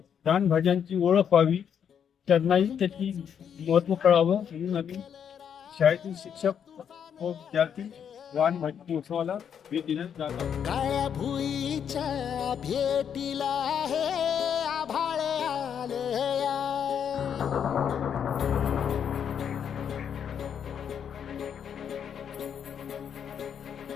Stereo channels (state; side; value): quieter; right; 8.1 dB